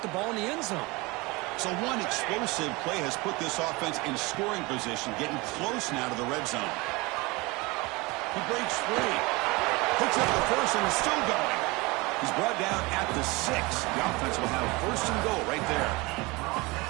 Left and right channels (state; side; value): quieter; left; 24.4 dB